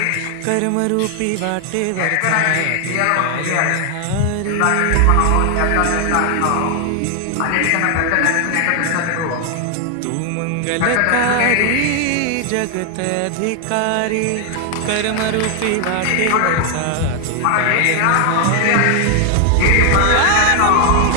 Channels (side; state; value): both; different; correlation 0.00